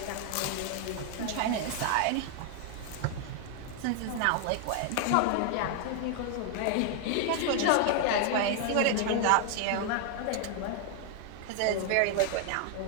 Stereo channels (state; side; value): different; both; correlation 0.00